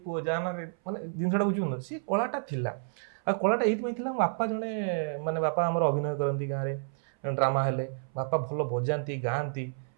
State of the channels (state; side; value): silent; left; 58 dB below the other